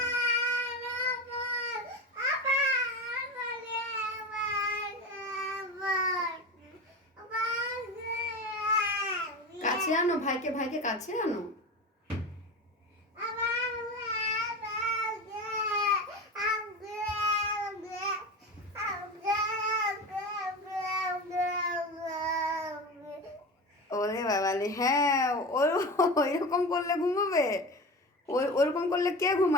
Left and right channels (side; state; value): both; normal; correlation 0.27